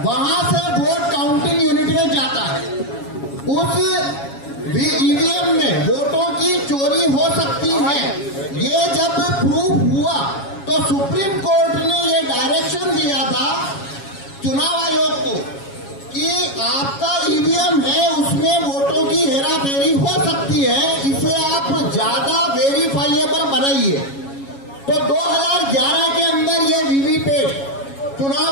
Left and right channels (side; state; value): right; late; 7.2 ms